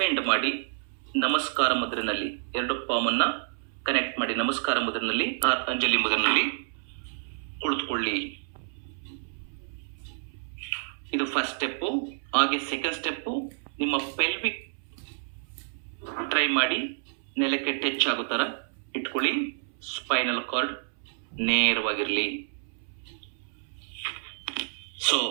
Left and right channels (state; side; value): silent; left; 59 dB below the other